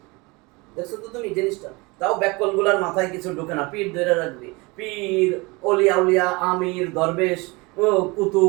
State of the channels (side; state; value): left; quieter; 25.7 dB